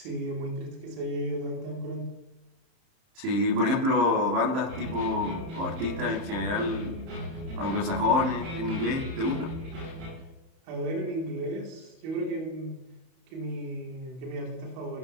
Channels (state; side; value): late; left; 30 ms